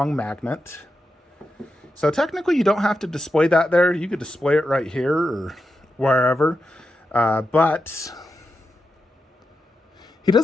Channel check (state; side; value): normal; both; correlation 0.88